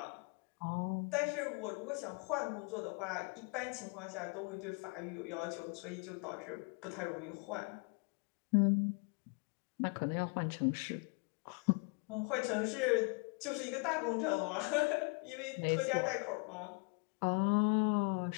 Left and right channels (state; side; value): quieter; right; 33.9 dB